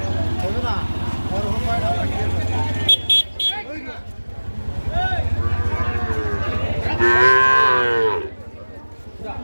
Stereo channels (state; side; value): inverted; both; correlation -1.00